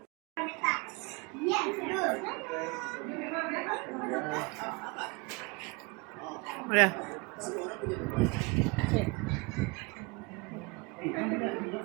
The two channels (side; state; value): left; quieter; 27.9 dB